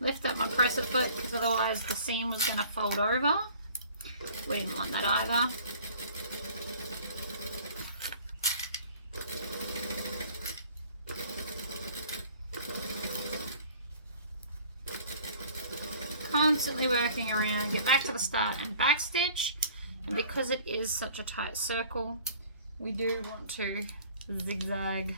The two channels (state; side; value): inverted; both; correlation -0.50